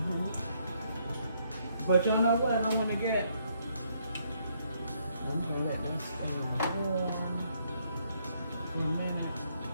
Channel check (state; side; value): inverted; both; correlation -0.71